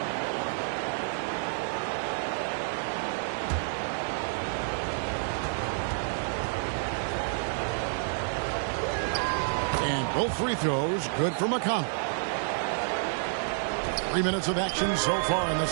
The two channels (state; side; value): silent; left; digital silence